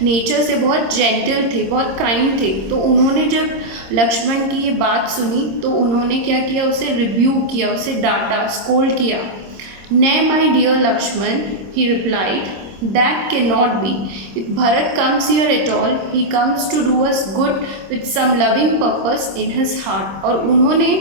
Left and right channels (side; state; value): left; late; 26 ms